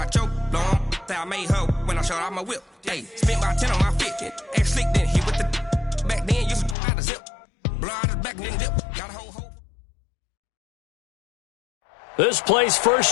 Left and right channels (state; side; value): drops out; right; at 6.8 s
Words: your long. Say I made her when I showed out my whip. Hey, spent my 10 on my fit. Ex slick, then he with the. Back then, used to out the zip. Blow out his back and then dip. Got a whole. This place